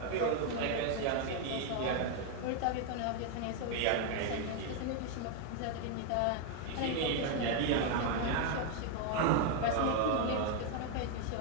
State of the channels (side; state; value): both; different; correlation 0.01